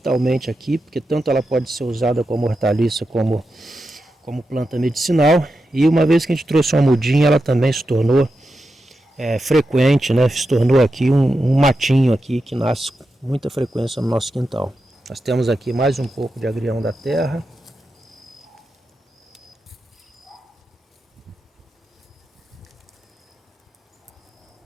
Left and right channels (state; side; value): normal; both; correlation 0.89